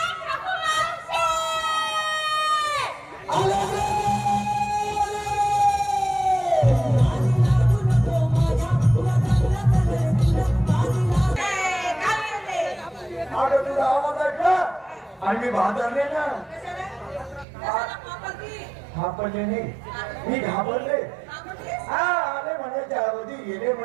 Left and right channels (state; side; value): drops out; left; at 17.4 s